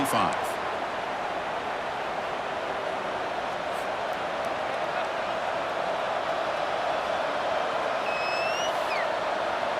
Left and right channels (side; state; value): both; identical; correlation 1.00